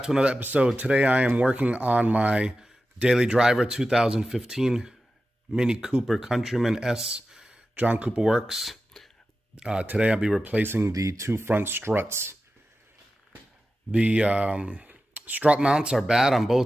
to another episode. Today I am working on my daily driver 2015 Mini Cooper Countryman S John Cooper Works. Today I'll be replacing the two front struts. The strut mounts are bad on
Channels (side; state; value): both; normal; correlation 0.93